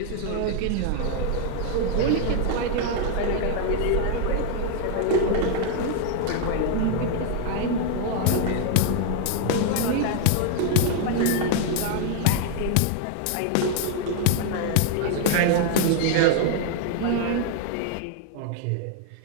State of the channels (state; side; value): different; both; correlation 0.00